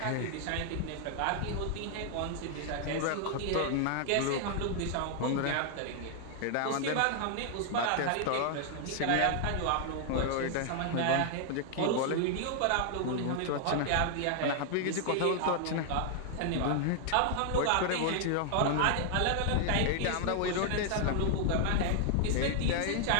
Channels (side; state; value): both; different; correlation 0.00